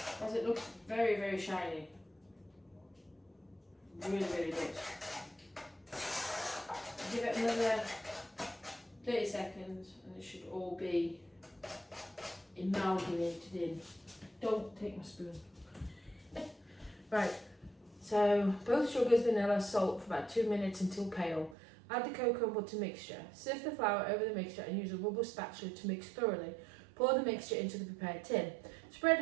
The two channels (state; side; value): drops out; left; at 21.6 s